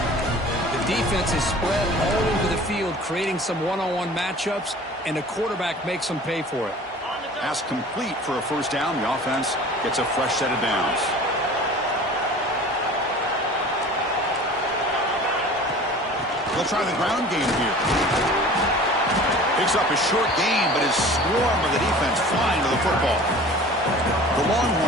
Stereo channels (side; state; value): both; normal; correlation 0.43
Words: The defense is spread all over the field, creating some one-on-one matchups, and the quarterback makes them pay for it. Pass complete for a first down. The offense gets a fresh set of downs. They'll try the ground game here. Picks up a short gain, but his swarm of the defense flying to the football. The